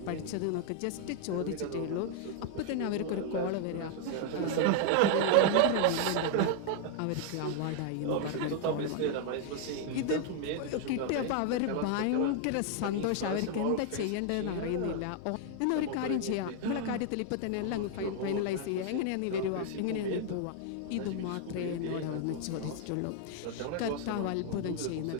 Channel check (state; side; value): different; both; correlation 0.00